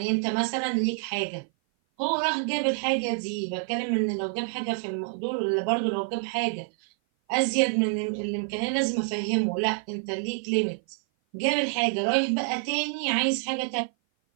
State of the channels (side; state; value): left; silent; 56 dB below the other